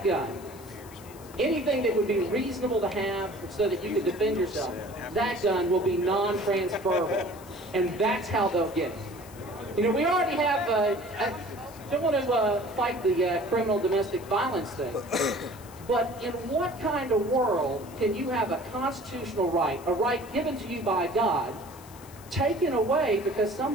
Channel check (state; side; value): noise; left; hiss, 21 dB below the sound